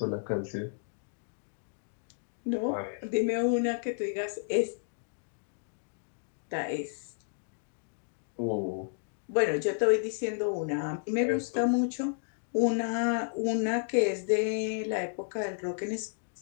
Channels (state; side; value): silent; right; digital silence